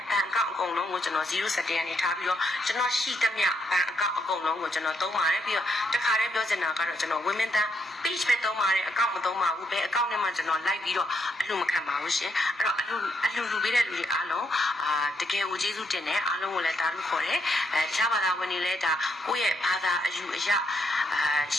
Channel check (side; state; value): both; normal; correlation 0.77